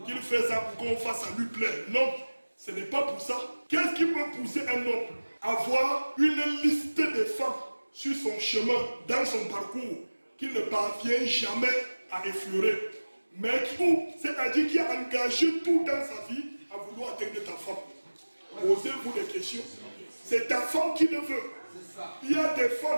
qu'il fait ça pour qu'on fasse à lui plaire. Non, ce n'est pas pour ça. Qu'est-ce qui peut pousser un homme à voir une liste de femmes sur son chemin, dans son parcours, qu'il ne parvient jamais à effleurer? Mais tout, c'est-à-dire qu'il a engagé tout dans sa vie à vouloir atteindre ta femme. Posez-vous des questions. C'est ta femme qui le veut. Il y a des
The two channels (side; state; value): both; inverted; correlation -1.00